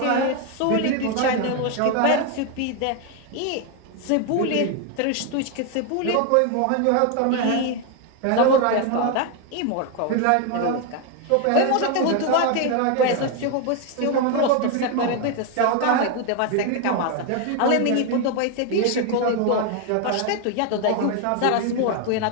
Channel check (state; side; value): different; both; correlation 0.01